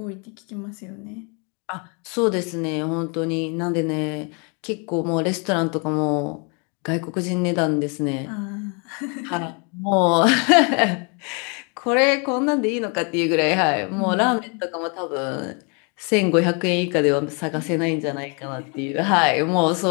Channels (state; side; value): quieter; right; 34.8 dB